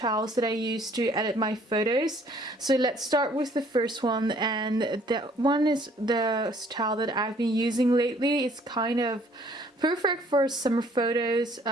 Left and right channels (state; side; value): normal; both; correlation 0.60